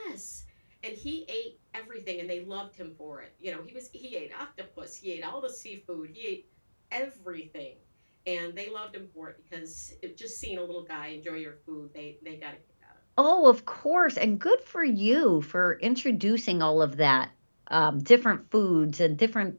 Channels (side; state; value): both; inverted; correlation -1.00